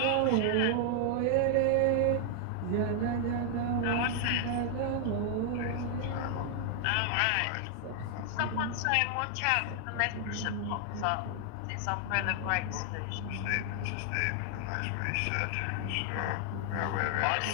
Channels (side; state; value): both; different; correlation 0.00